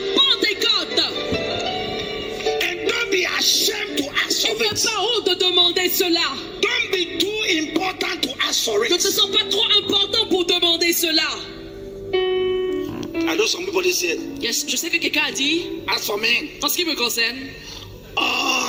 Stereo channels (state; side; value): identical; both; correlation 1.00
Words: Pentecôte. And don't be ashamed to ask Et for n'aie it. pas honte de demander cela. Don't be too important to ask for Ne te it. sens pas trop important pour demander cela. I know some people they say, Yes, je sais que quelqu'un a dit, as for me, en ce qui me concerne,